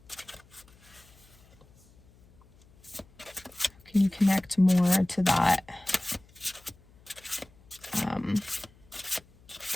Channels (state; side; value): noise; left; hum, 27 dB below the sound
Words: Can you connect more to that